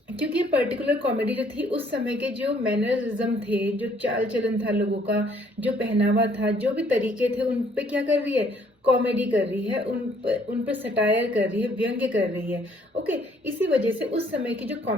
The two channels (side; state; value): both; normal; correlation 0.63